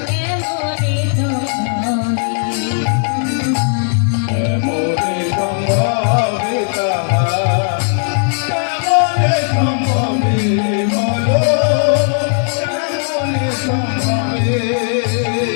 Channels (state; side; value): silent; right; digital silence